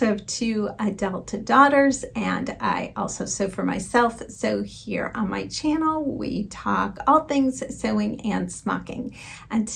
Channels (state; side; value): identical; both; correlation 1.00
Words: have two adult daughters, and I also sew for myself. So here on my channel, we talk all things sewing and smocking. And